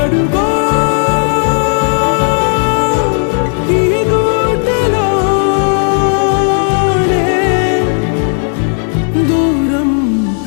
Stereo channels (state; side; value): silent; right; 59 dB below the other